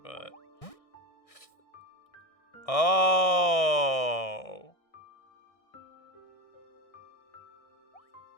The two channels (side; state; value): right; late; 1.6 ms